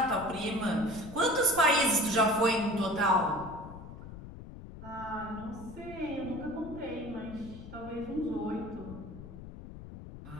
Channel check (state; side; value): noise; left; rumble, 13 dB below the sound